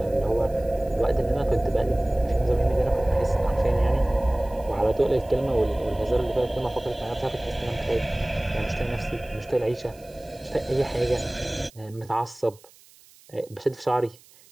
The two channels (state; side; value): noise; right; hiss, 26 dB below the sound